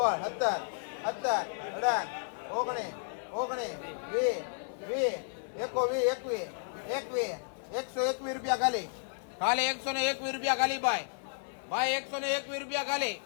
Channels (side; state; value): right; silent; 56 dB below the other